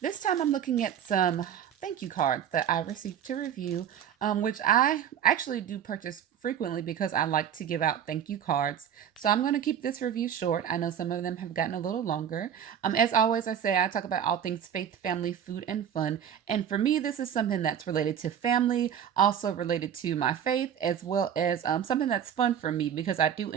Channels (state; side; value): quieter; left; 9.1 dB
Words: This time I'm looking at some thank you cards that I received to review, which I actually do purchase frequently because I like to give out thank you cards. So I'm going to keep this review short. I know some of them have gotten a little longer. As always, I say I talk about all things faith, family, food, and fun. And for me, this is something that's related to family, also related to my faith, as well as something that's fun for me because I do